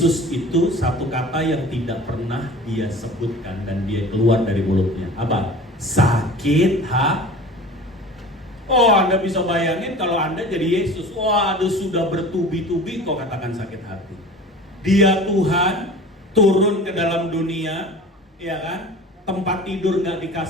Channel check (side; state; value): both; normal; correlation 0.40